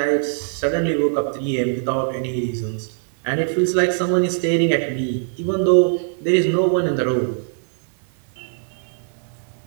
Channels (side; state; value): left; silent; digital silence